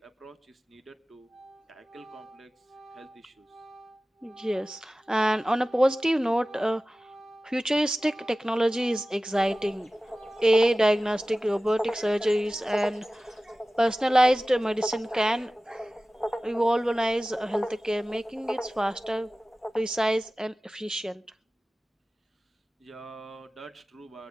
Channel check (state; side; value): normal; both; correlation 0.96